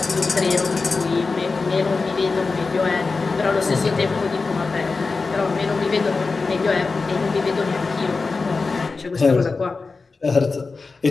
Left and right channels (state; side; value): quieter; right; 4.1 dB